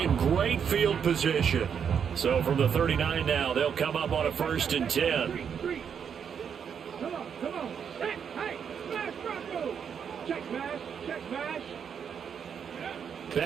great field position. So from the 39 now, they'll come up on a 1st and 10. Come on. Hey, smash Bronco. Check smash.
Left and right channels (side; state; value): left; quieter; 7.4 dB